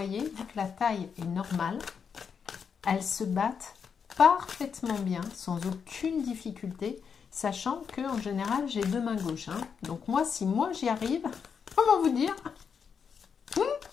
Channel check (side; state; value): right; quieter; 6.5 dB